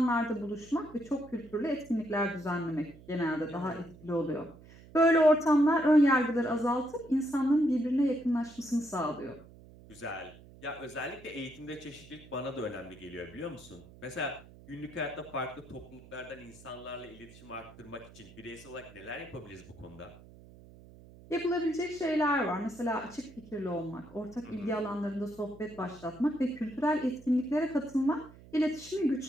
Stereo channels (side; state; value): right; noise; hum, 21 dB below the sound